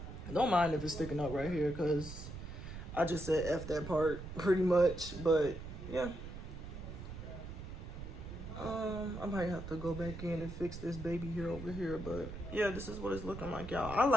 mind if it's sticking up right here, because I just said F that part pretty much. But yeah, I might have to go back in and fix this baby hair over here. But yeah, this is what it's looking like, y'all. I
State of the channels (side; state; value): right; noise; rumble, 9 dB below the sound